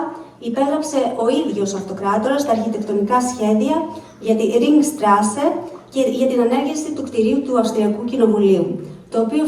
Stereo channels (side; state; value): both; identical; correlation 1.00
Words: υπέγραψε ο ίδιος ο αυτοκράτορας τα αρχιτεκτονικά σχέδια για τη Ringstraße και για την ανέργεια του κτηρίου του Αυστριακού Κοινοβουλίου, το οποίο